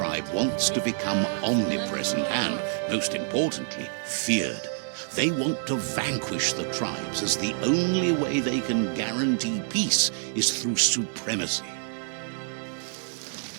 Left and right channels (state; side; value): silent; left; 60 dB below the other